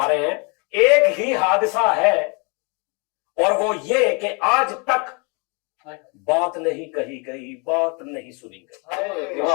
रहे हैं एक ही हादसा है और वो ये कि आज तक बात नहीं कही गई, बात नहीं सुनी गई।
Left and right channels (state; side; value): quieter; right; 32.7 dB